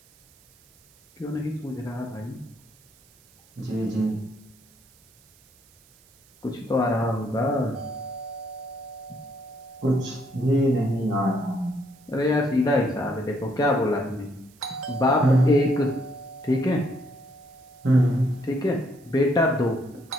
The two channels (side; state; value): right; noise; hiss, 29 dB below the sound